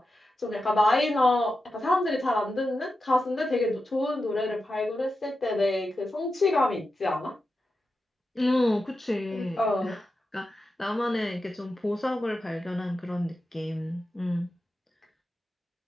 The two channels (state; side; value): normal; both; correlation 0.90